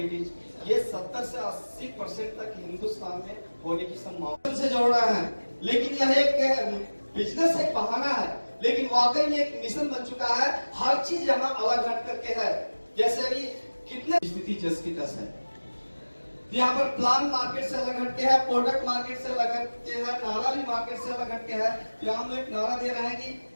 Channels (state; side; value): inverted; both; correlation -1.00